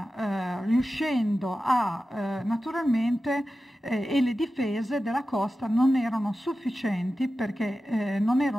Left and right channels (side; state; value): both; normal; correlation 0.93